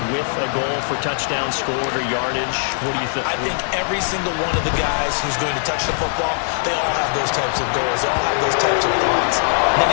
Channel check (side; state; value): right; silent; digital silence